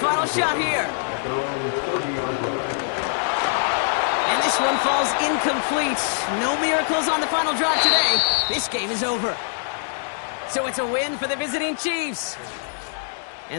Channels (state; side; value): silent; right; digital silence